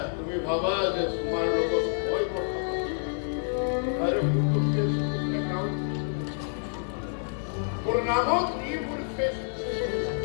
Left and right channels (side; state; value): right; silent; 59 dB below the other